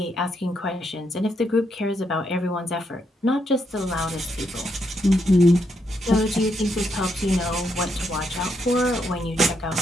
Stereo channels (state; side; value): normal; both; correlation 0.78